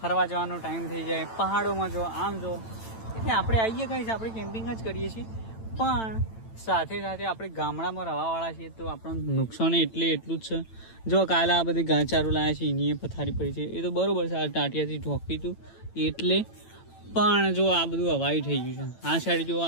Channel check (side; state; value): right; late; 9.0 ms